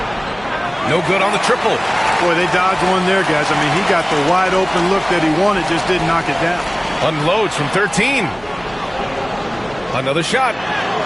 No good on the triple. Boy, they dodged one there, guys. I mean, he got the wide open look that he wanted, just didn't knock it down. Unloads from 13. Another shot.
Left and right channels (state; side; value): noise; right; hum, 23 dB below the sound